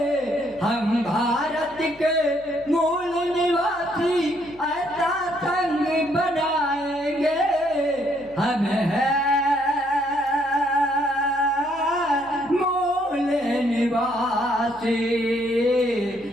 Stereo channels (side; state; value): left; noise; hum, 26 dB below the sound